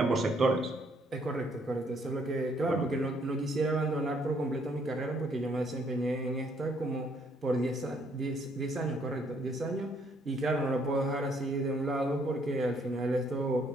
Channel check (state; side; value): normal; both; correlation 0.68